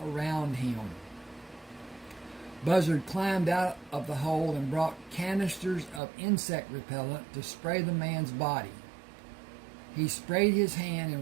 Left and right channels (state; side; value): drops out; left; at 6.0 s